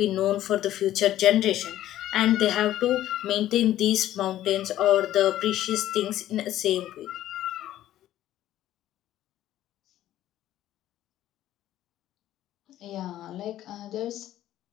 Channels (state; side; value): quieter; right; 13.1 dB